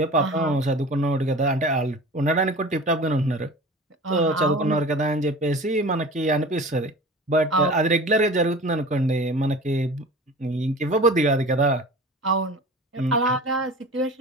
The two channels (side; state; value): both; normal; correlation 0.38